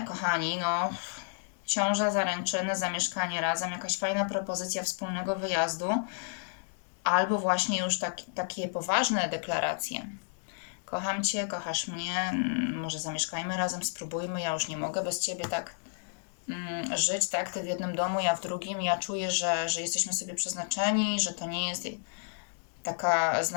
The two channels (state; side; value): silent; right; digital silence